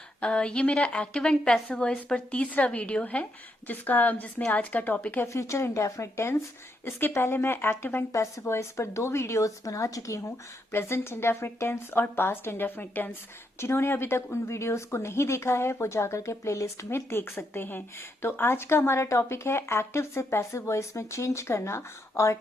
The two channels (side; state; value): both; normal; correlation 0.79